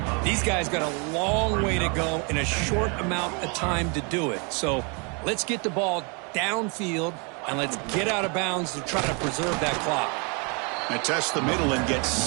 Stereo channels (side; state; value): left; quieter; 34.0 dB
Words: these guys got a long way to go in a short amount of time to do it. So let's get the ball downfield and let's get out of bounds to try to preserve that clock. And test the middle and get